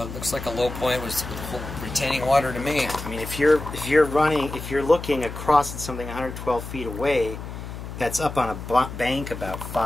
looks like a low point was retaining water to me. I mean, if you're looking across at something 112 feet away, that's up on a bank about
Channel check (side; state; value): left; noise; hum, 9 dB below the sound